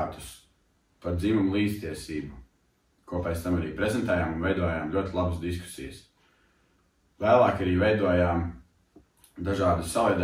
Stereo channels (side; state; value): both; identical; correlation 1.00